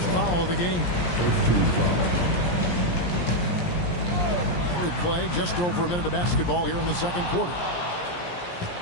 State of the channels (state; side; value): late; right; 17 ms